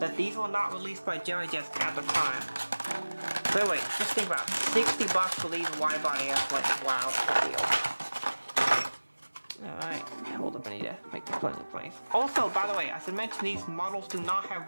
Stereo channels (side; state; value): both; inverted; correlation -1.00